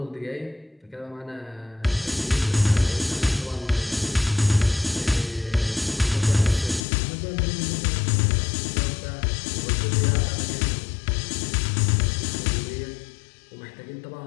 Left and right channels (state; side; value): drops out; right; at 6.8 s